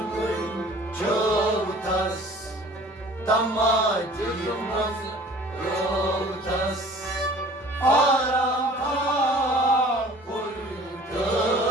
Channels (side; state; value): both; normal; correlation 0.48